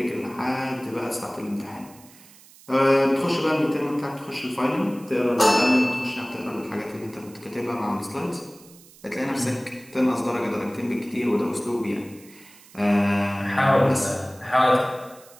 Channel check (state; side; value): noise; right; hiss, 23 dB below the sound